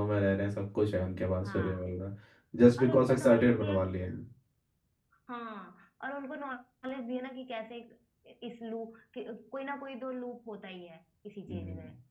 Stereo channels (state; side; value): identical; both; correlation 1.00